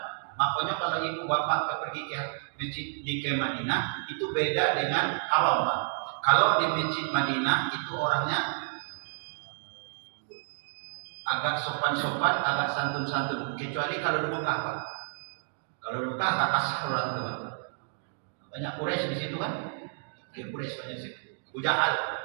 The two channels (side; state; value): left; silent; digital silence